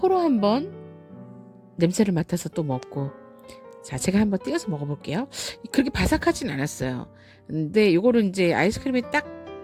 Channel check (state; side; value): identical; both; correlation 1.00